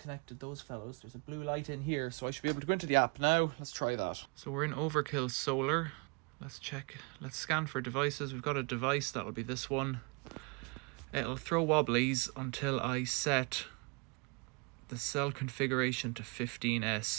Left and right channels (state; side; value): quieter; left; 32.1 dB